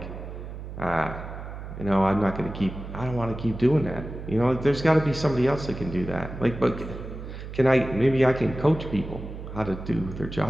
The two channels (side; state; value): right; noise; hum, 10 dB below the sound